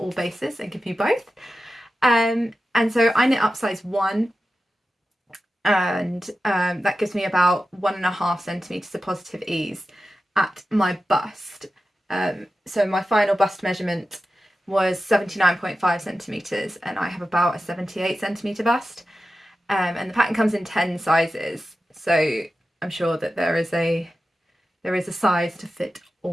all bases and give you both. And so I knit up size 1, and that gives me about 1.5 centimetres of positive ease at my bust. So my final bust measurement was 79.5 centimetres, and I have about a 78 centimetre bust. And the pattern comes in 10 sizes, so I'm sure that there is a size to fit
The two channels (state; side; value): normal; both; correlation 0.93